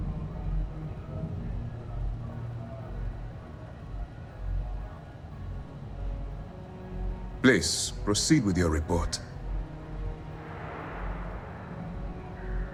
Please, proceed with your report.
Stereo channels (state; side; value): identical; both; correlation 1.00